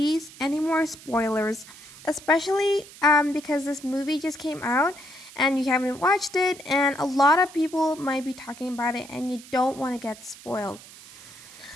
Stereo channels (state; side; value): noise; right; hiss, 19 dB below the sound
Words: any more spoilers, especially because this movie just came out and you haven't watched it, and a lot of people might be talking about it and you don't want to get spoiled.